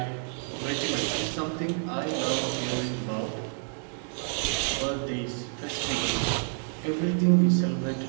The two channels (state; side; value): silent; left; 58 dB below the other